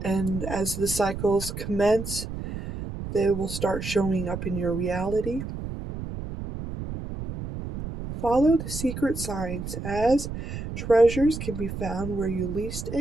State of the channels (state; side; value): noise; right; rumble, 7 dB below the sound